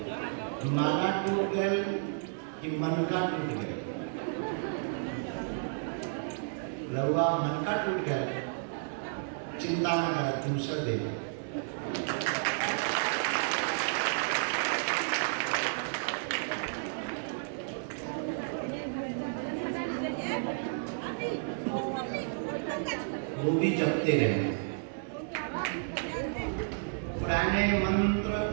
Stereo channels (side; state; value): left; silent; digital silence